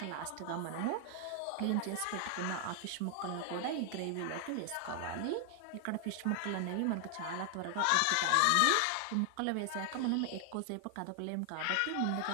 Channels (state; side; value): different; both; correlation 0.00